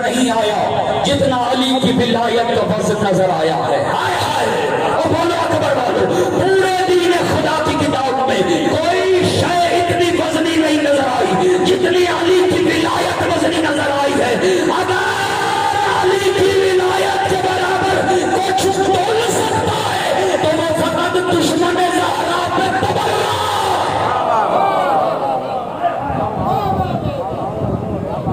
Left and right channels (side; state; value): right; noise; rumble, 29 dB below the sound